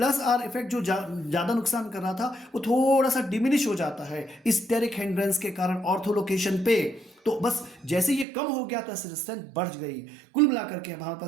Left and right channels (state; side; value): drops out; left; at 8.2 s